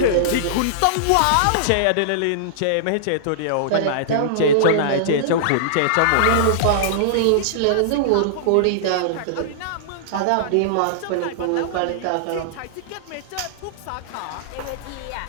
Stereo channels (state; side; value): different; both; correlation -0.02